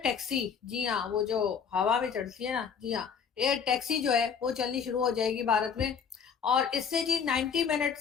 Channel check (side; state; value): right; quieter; 6.8 dB